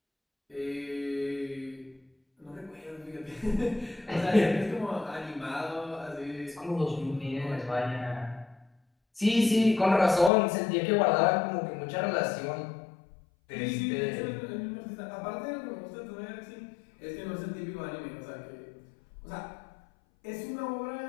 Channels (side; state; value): right; drops out; at 10.3 s